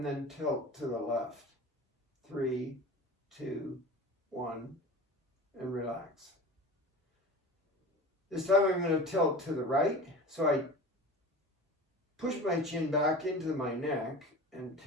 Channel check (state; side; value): normal; both; correlation 0.36